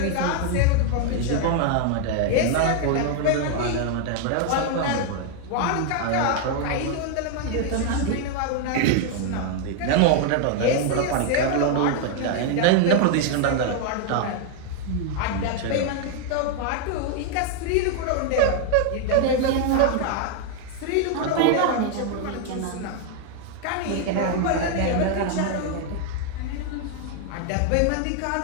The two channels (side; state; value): both; different; correlation 0.00